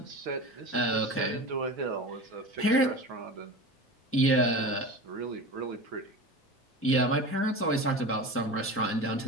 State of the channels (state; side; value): normal; both; correlation 0.31